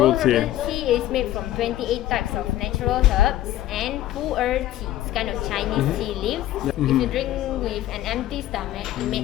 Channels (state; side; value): quieter; right; 13.9 dB